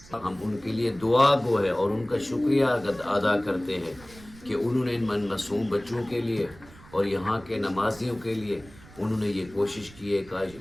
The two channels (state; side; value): noise; right; rumble, 21 dB below the sound